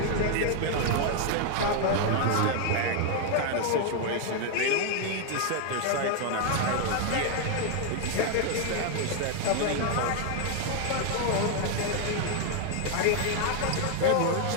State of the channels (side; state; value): both; different; correlation 0.00